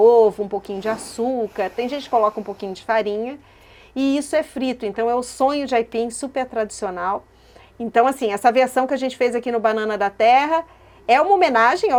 um pouquinho de açúcar, tem gente que coloca um pouquinho de farinha, e isso é frito, então é o sonho de aipim super tradicional. Então, assim, essa versão que a gente fez aqui no Banana da Terra é uma homenagem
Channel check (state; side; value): identical; both; correlation 1.00